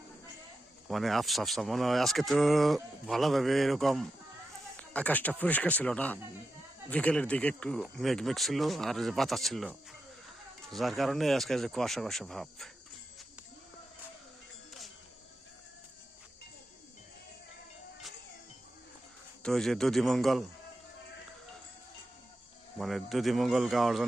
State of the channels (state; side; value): normal; both; correlation 0.89